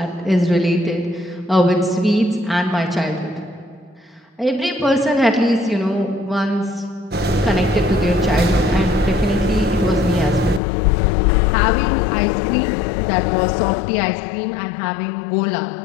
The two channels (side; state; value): right; drops out; at 10.6 s